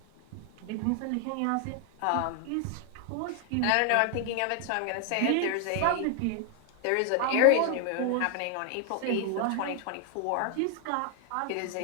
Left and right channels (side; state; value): both; different; correlation 0.00